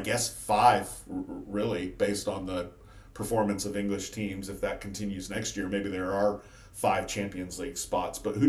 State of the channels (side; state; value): both; identical; correlation 1.00